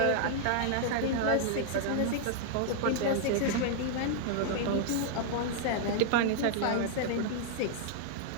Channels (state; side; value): different; both; correlation -0.01